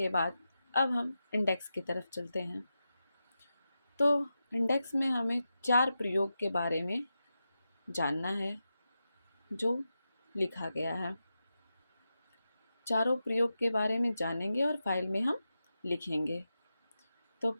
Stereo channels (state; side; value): inverted; both; correlation -0.90